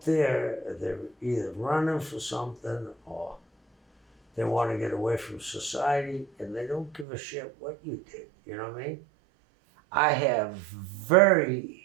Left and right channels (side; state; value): left; drops out; at 7.1 s